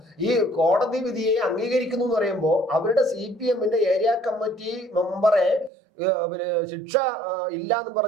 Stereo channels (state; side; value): drops out; left; at 5.7 s